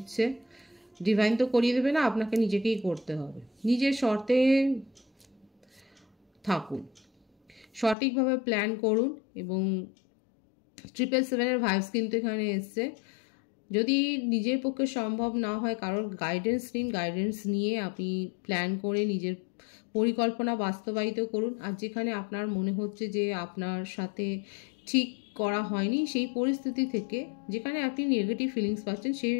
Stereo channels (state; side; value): drops out; right; at 8.0 s